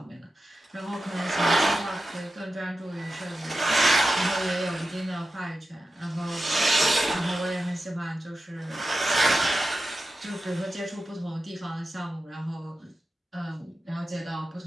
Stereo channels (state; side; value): normal; both; correlation 0.92